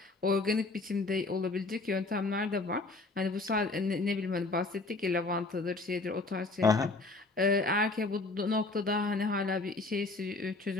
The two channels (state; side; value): quieter; right; 3.4 dB